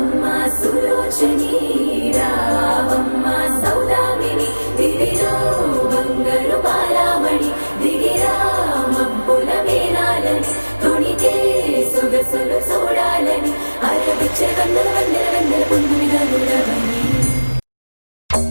సులోచని రావమ్మ సౌదామిని దివిలో బంగారు బాలామణి దిగిరా మబ్బుల మేనాలని తొణికే సొగసులు చూడాలని అరవిచ్చే వందల వందల వందల పుంగునిగా నుడవని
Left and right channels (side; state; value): both; inverted; correlation -1.00